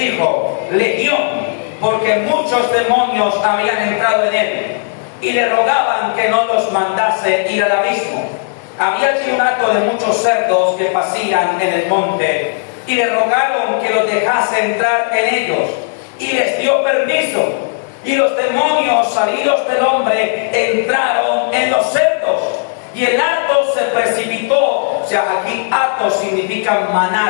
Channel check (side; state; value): right; silent; digital silence